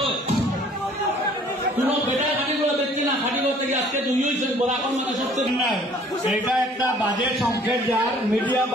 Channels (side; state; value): both; normal; correlation 0.55